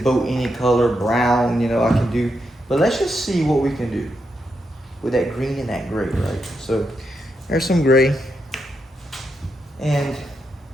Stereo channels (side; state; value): both; normal; correlation 0.83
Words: any color, brown, you know, I can do. But let's just see what we can do with that green and that gray, right? So there's some gray. And